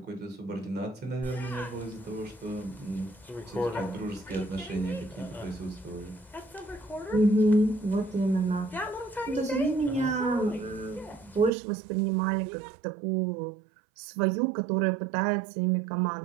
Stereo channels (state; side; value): drops out; left; at 11.5 s